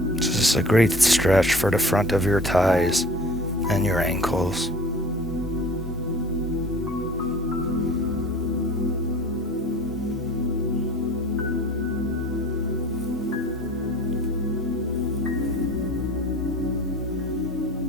This is a great stretch for the front of your thighs and your ankles.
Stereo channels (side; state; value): both; normal; correlation 0.45